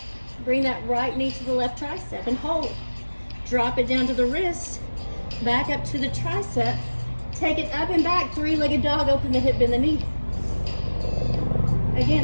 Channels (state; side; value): inverted; both; correlation -1.00